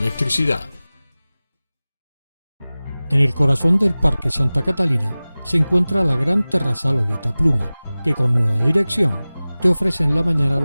En el corazón del Parque Santa Catalina se encuentra la gran terraza Lolita Pluma, que con nueva dirección te ofrece en la mañana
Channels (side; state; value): both; inverted; correlation -0.98